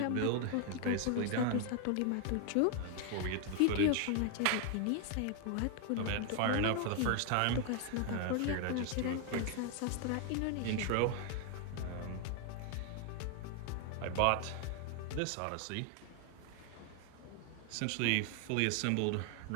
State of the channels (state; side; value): different; both; correlation 0.00